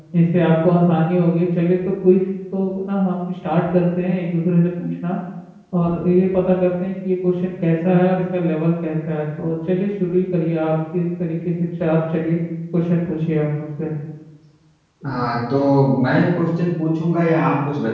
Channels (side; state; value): both; identical; correlation 1.00